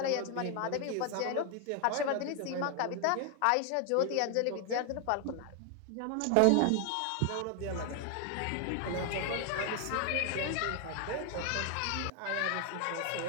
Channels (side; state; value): both; different; correlation 0.00